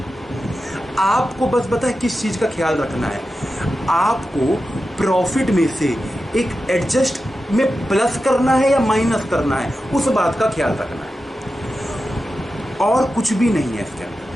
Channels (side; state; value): both; normal; correlation 0.91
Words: आपको बस पता है किस चीज का ख्याल रखना है, आपको प्रॉफिट में से एक एडजस्ट में प्लस करना है या माइनस करना है, उस बात का ख्याल रखना है, और कुछ भी नहीं है इसके